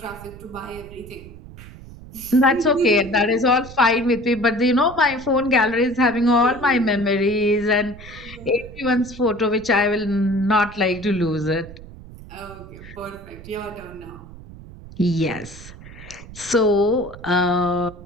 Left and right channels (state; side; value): noise; right; rumble, 17 dB below the sound